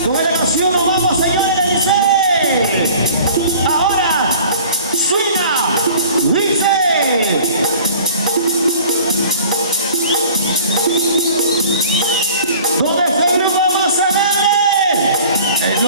Con la canción vamos, señores, dice. Ahora, suena, dice. ¿Dónde está el grupo Mozzarella? Es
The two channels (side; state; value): both; inverted; correlation -0.47